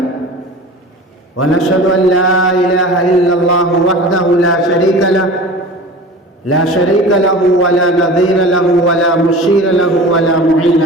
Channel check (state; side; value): normal; both; correlation 0.37